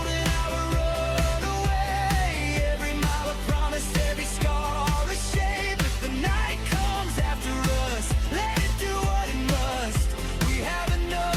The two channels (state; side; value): identical; both; correlation 1.00